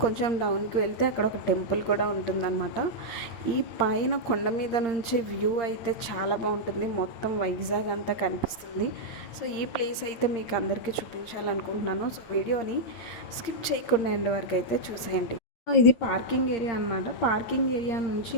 కొంచెం డౌన్కి వెళ్తే అక్కడ ఒక టెంపుల్ కూడా ఉంటుందన్నమాట. ఈ పైన కొండ మీద నుంచి వ్యూ అయితే చాలా బాగుంటుంది, మొత్తం వైజాగ్ అంతా కనిపిస్తుంది. సో ఈ ప్లేస్ అయితే మీకు అందరికీ చూపించాలనుకుంటున్నాను. సో వీడియోని స్కిప్ చేయకుండా ఎండ్ వరకు అయితే చూసేయండి. ఇది పార్కింగ్ ఏరియా అనమాట. పార్కింగ్ ఏరియా నుంచి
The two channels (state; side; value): late; right; 8.7 ms